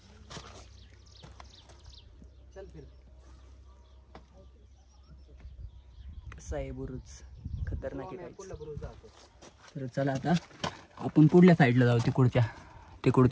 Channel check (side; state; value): both; identical; correlation 1.00